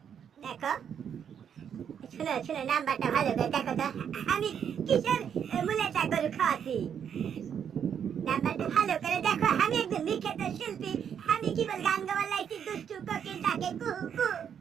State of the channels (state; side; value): quieter; left; 8.2 dB